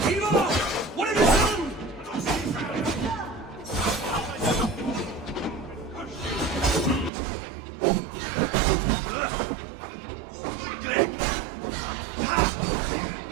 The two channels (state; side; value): drops out; left; at 7.1 s